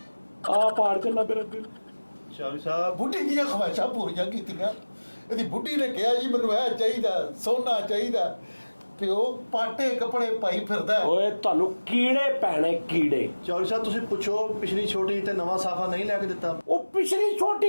ਆ ਪਾੜ ਚੱਲਾ ਮੇਰਾ ਦਿਲ। ਚੌਧਰੀ ਸਾਹਿਬ ਬੁੱਢੀ ਦੀਆਂ ਖਵਾਇਸ਼ਾਂ ਪੂਰੀਆਂ ਕੀਤੀਆਂ। ਇਹਦੀ ਬੁੱਢੀ ਨੇ ਕਿਹਾ ਜੀ ਮੈਨੂੰ ਇਹ ਚਾਹੀਦਾ, ਸੋਨਾ ਚਾਹੀਦਾ। ਪਿਓ ਪਾਟੇ ਕੱਪੜੇ ਪਾਈ ਫਿਰਦਾ। ਓਏ ਤੁਹਾਨੂੰ ਕੀੜੇ ਪੈਣੇ, ਕੀੜੇ। ਚੌਧਰੀ ਸਾਹਿਬ ਤੁਸੀਂ ਪੁੱਛੋ ਪਿਛਲੀ ਛੋਟੀ ਤੇ ਨਵਾਂ ਸਾਫਾ ਨਹੀਂ ਲੈ ਕੇ ਦਿੱਤਾ। ਉਹ ਪਿਛਲੀ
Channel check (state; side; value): inverted; both; correlation -1.00